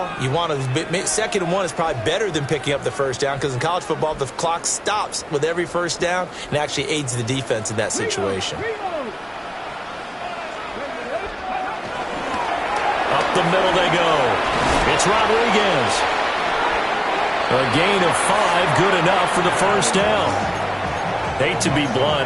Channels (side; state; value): both; identical; correlation 1.00